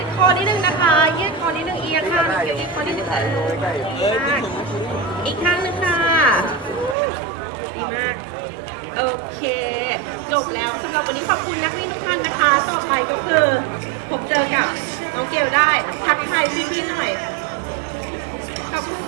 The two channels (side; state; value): left; drops out; at 7.0 s